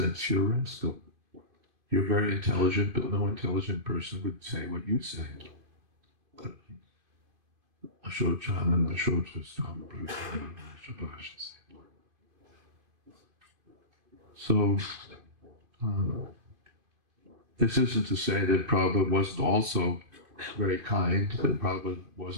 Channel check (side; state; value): left; late; 2.5 ms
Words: You're a rascal. You're very intelligent, but no intelligent person would say what you say. So, this isn't to say that Prabhupada wasn't also very kind, that Prabhupada